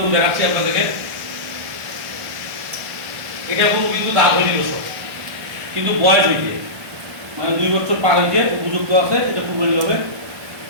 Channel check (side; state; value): left; late; 1.3 ms